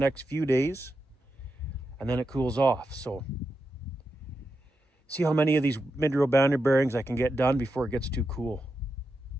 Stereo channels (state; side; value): normal; both; correlation 0.87